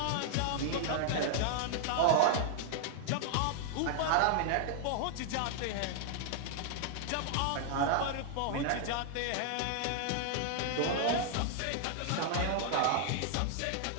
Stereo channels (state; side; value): different; both; correlation 0.00